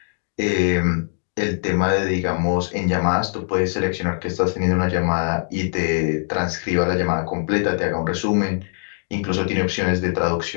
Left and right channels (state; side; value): silent; right; digital silence